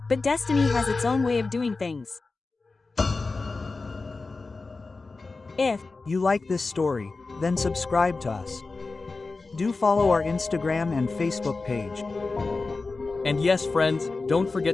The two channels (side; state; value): right; quieter; 3.8 dB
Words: But destiny has its own way of doing things. If you like this story, then subscribe to us. Do follow our Instagram and Facebook page. And yes, friends, don't